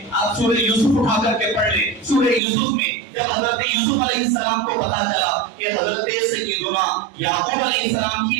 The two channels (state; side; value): drops out; left; at 2.4 s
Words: آپ سورہ یوسف اٹھا کر کے پڑھ لیں۔ سورہ یوسف میں جب حضرت یوسف علیہ السلام کو پتا چلا کہ حضرت سیدنا یعقوب علیہ السلام